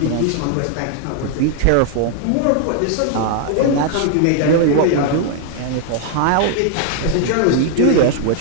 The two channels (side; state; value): both; different; correlation 0.00